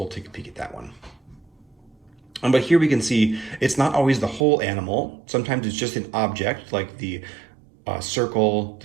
take a peek at that one. But here we can see it's not always the whole animal. Sometimes it's just an object like the the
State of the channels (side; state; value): left; drops out; at 4.5 s